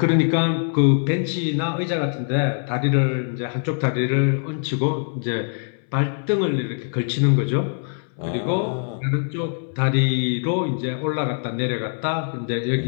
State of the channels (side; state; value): right; silent; 64 dB below the other